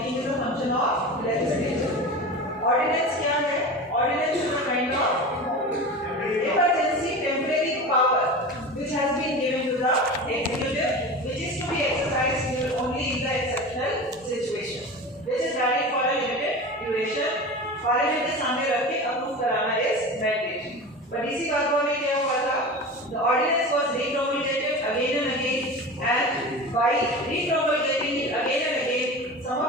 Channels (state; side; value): normal; both; correlation 0.31